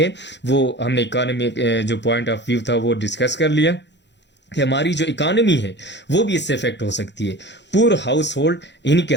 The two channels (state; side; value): late; right; 0.51 ms